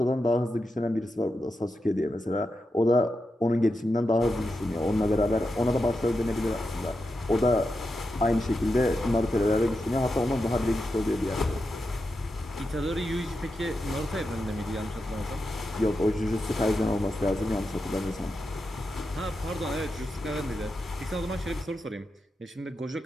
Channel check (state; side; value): normal; both; correlation 0.88